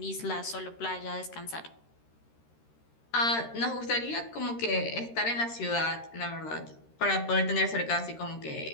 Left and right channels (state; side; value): late; right; 13 ms